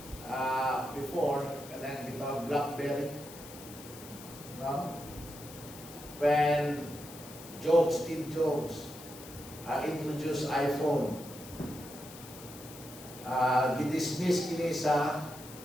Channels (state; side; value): noise; left; hiss, 16 dB below the sound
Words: before, kanang gitawag BlackBerry, no? When Steve Jobs introduced iPhone, gidismiss kini sa